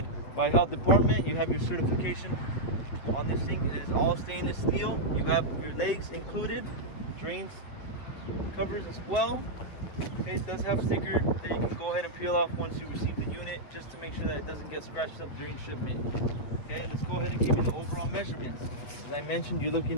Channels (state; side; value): late; right; 8.4 ms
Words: by health department. You have your certification on this thing. It is all stainless steel. You have your legs included, drains covers as well. Okay, it does have a sticker that you can go ahead and peel off once you receive the unit, just to make sure that it doesn't get scratched up during shipment. Okay, let's go ahead and give you the overall measurements. As I mentioned, you're